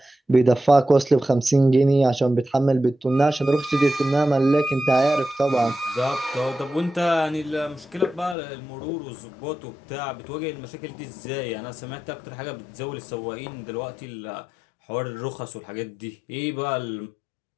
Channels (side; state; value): right; drops out; at 8.3 s